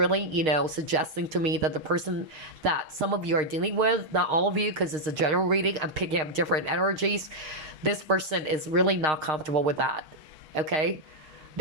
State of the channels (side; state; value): left; late; 6.5 ms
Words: suggesting to me that the person that some of you are dealing with, not all of you, because it's a general reading, I'm picking up different energies. This person is really not comfortable with that. Okay?